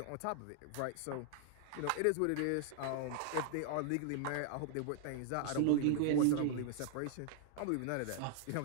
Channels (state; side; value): different; both; correlation 0.00